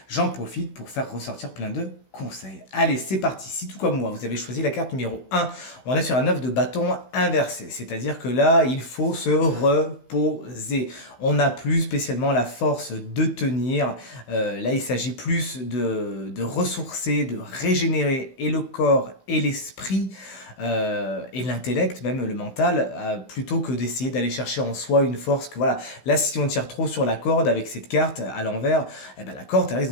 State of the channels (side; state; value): right; late; 16 ms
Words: J'en profite pour faire ressortir plein de conseils. Allez, c'est parti. Si tout comme moi, vous avez choisi la carte numéro 1, on est sur un œuf de bâton inversé. C'est-à-dire que là, il faut se reposer. On n'a plus spécialement la force de tenir. Là, il s'agit plus de ressourcer, de régénérer et le corps et l'esprit et l'intellect, même le mental, plutôt que d'essayer d'aller chercher en soi une force que voilà. Là, si on tire trop sur la corde avec cette carte à l'envers, eh ben, la corde elle risque